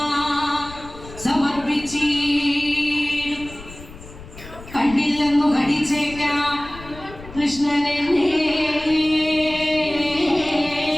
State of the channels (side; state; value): left; noise; rumble, 17 dB below the sound